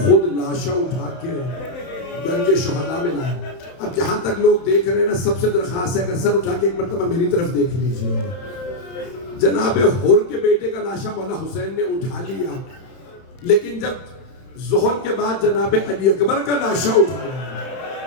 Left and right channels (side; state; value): right; late; 31 ms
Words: خود لاشا اٹھا کے درج شہداء میں لائے۔ اب جہاں تک لوگ دیکھ رہے ہیں نا، سب سے درخواست ہے اگر سر اٹھا کے ایک مرتبہ میری طرف دیکھ لیجیے۔ جناب حر کے بیٹے کا لاشا مولا حسین نے اٹھا لیا، لیکن جب ظہر کے بعد جناب علی اکبر کا لاشا اٹھایا